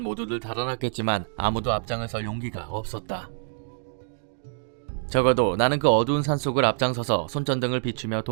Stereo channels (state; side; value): silent; left; digital silence